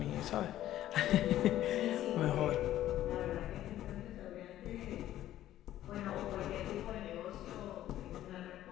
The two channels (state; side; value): quieter; right; 13.2 dB